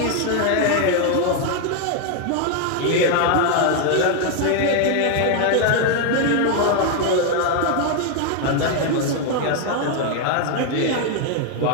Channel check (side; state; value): both; different; correlation 0.01